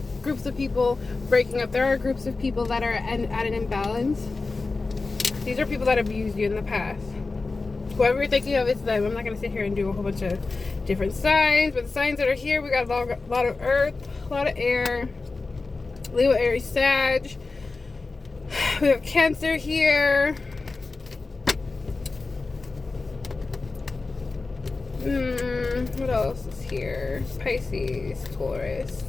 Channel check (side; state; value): right; quieter; 3.8 dB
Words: groups of people breaking up. There are groups of people that are at an imbalance. These are people that abused you in the past. Whoever you're thinking of, it's them. I'm not going to sit here and do a whole bunch of different signs, but the signs that are here, we got a lot of earth, a lot of air, Leo, Aries, Sag. We have Cancer here. What else is here? Pisces, Taurus,